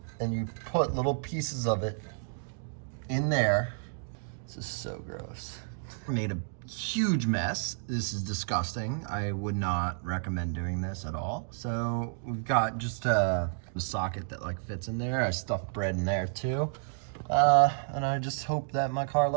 and you put little pieces of it in there. This is so gross. Made a huge mess. This is disgusting. I would not recommend doing this at all. So we've got just a socket that like fits in there. I stuffed bread in there too. And I just hope that my car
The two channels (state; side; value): silent; left; digital silence